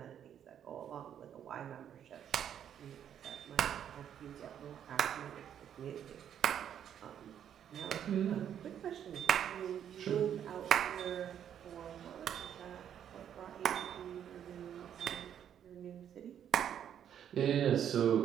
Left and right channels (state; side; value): quieter; left; 9.4 dB